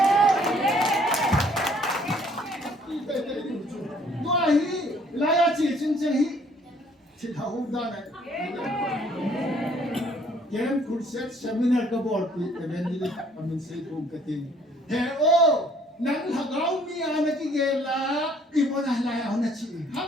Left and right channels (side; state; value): both; normal; correlation 0.61